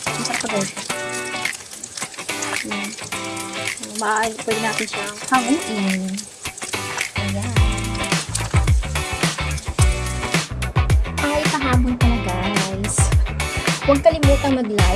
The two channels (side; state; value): both; identical; correlation 1.00